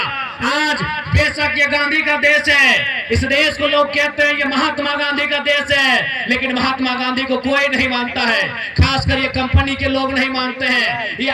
आज बेशक ये गांधी का देश है, इस देश को लोग कहते हैं ये महात्मा गांधी का देश है, लेकिन महात्मा गांधी को कोई नहीं मानता है, खासकर ये कंपनी के लोग नहीं मानते हैं, ये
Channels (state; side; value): identical; both; correlation 1.00